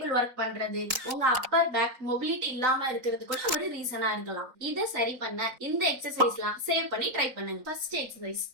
ஒர்க் பண்றது, உங்க அப்பர் பேக் மொபிலிட்டி இல்லாம இருக்கிறது கூட ஒரு ரீசனா இருக்கலாம். இதை சரி பண்ண இந்த எக்ஸசைஸ்லாம் சேவ் பண்ணி ட்ரை பண்ணுங்க. ஃபர்ஸ்ட் எக்ஸசைஸ்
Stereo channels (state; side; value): late; left; 3.9 ms